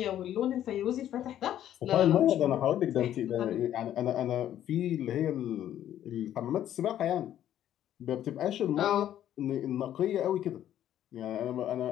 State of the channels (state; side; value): quieter; right; 11.4 dB